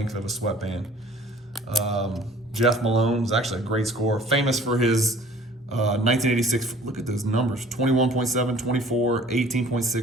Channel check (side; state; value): both; normal; correlation 0.51